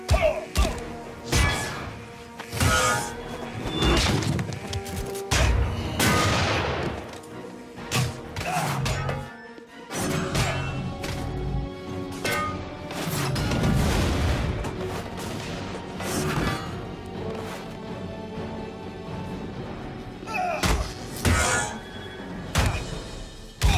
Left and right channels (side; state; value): both; identical; correlation 1.00